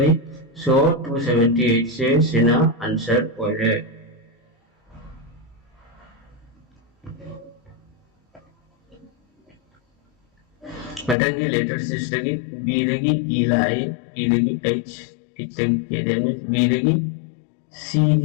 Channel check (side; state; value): right; drops out; at 11.2 s